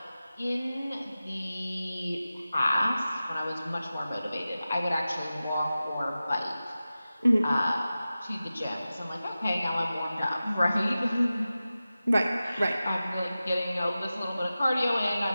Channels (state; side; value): inverted; both; correlation -0.95